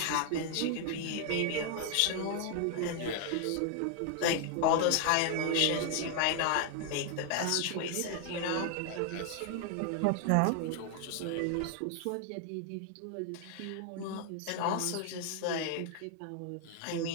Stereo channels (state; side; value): different; both; correlation 0.00